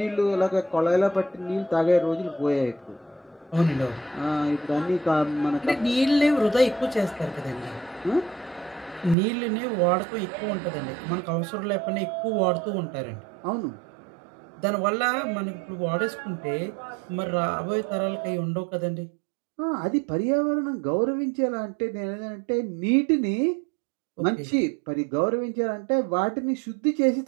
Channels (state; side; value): drops out; left; at 9.2 s